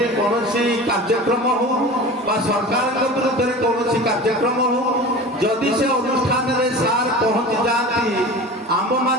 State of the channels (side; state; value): both; normal; correlation 0.35